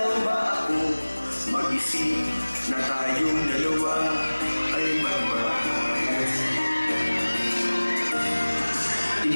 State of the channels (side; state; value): both; inverted; correlation -1.00